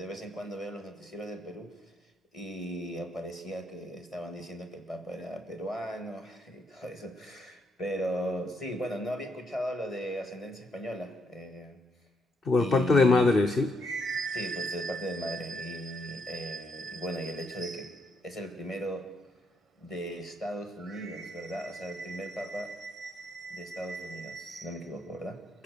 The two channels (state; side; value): normal; both; correlation 0.75